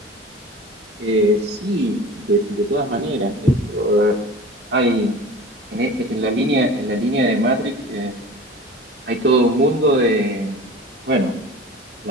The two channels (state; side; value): normal; both; correlation 0.38